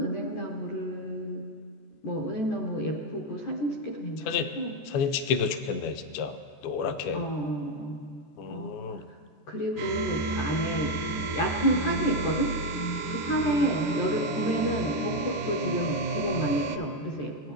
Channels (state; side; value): late; right; 14 ms